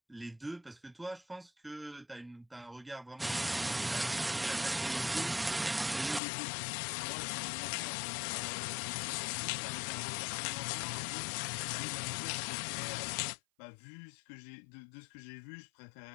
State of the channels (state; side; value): drops out; right; at 6.2 s